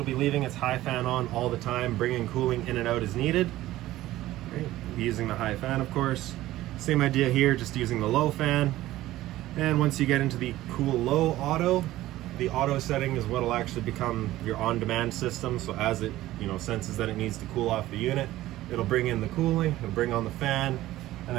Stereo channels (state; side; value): quieter; left; 15.7 dB